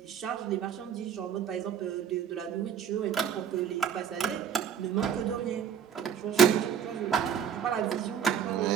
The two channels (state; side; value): quieter; left; 8.2 dB